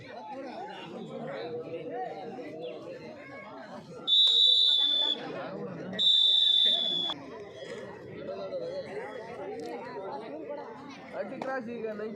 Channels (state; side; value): identical; both; correlation 1.00